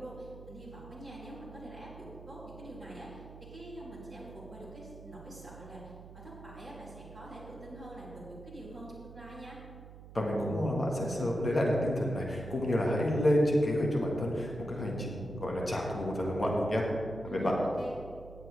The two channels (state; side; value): noise; right; hum, 16 dB below the sound